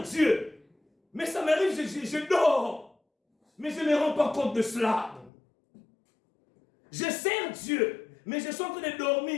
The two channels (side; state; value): right; drops out; at 5.3 s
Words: Dieu, mais ça m'arrive, je dors, mais je ne me rends pas compte de cela. Je sers Dieu, mais je suis en train de dormir.